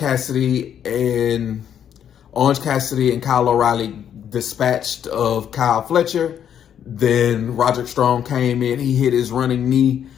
and Kyle O'Reilly dispatched of Kyle Fletcher. Then Roderick Strong came in. He hit his running knee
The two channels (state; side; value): quieter; right; 9.2 dB